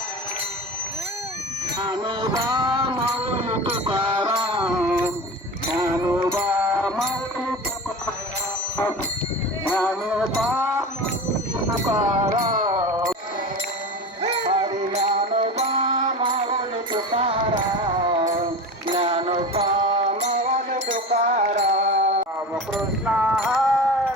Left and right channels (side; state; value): both; normal; correlation 0.30